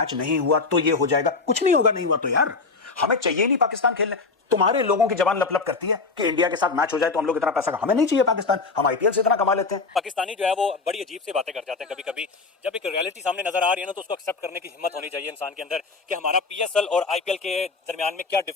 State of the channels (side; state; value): right; quieter; 4.2 dB